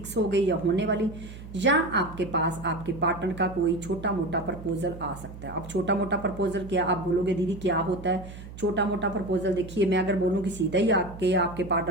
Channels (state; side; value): noise; right; hum, 14 dB below the sound